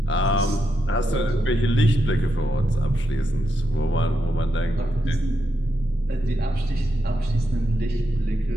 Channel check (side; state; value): both; normal; correlation 0.84